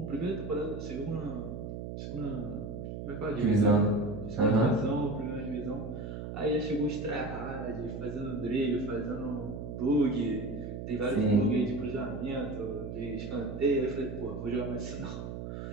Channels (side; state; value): right; noise; hum, 7 dB below the sound